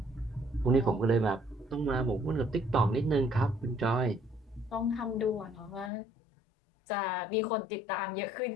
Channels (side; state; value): right; drops out; at 5.9 s